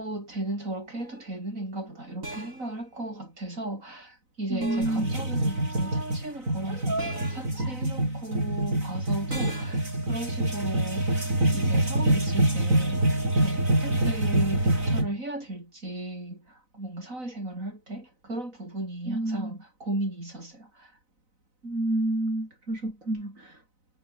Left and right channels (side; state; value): left; late; 4.0 ms